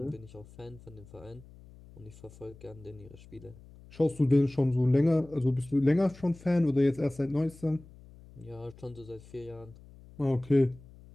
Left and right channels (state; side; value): noise; left; hum, 21 dB below the sound